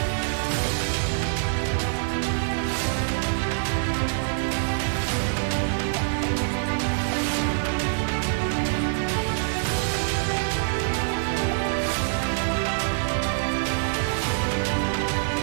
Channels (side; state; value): left; silent; digital silence